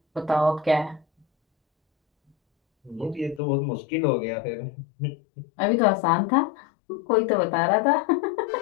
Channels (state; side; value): drops out; right; at 3.4 s